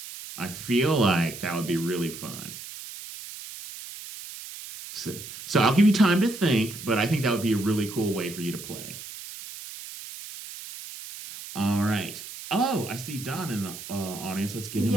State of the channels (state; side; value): noise; right; hiss, 12 dB below the sound